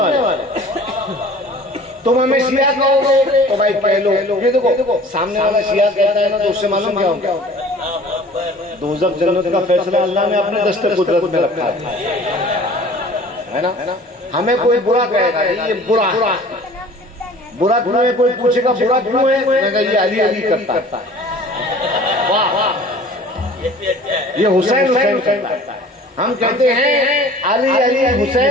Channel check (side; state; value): both; normal; correlation 0.47